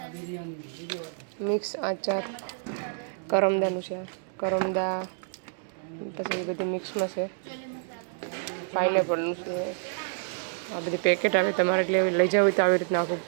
મિક્સ આચાર, કરમદાનું છે. કરમદા પછી એ બધી મિક્સમાં છે. પાઇનેપલનું છે. આ બધી પેકેટ આવે, તમારે એટલે લઈ જાવ હોય તો આવી રીતના આખું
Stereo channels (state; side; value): silent; left; digital silence